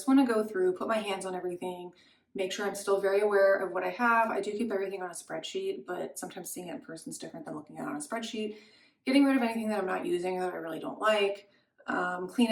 want to go through, put my hands on everything, make sure I'm still very aware of what I have. I do keep everything on a spreadsheet, but sometimes seeing it in person is different than looking at it on a spreadsheet. Getting rid of anything that I'm not using or that I really don't like, clean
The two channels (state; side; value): identical; both; correlation 1.00